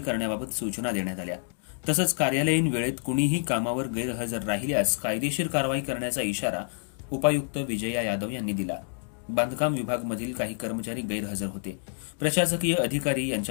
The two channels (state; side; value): silent; right; digital silence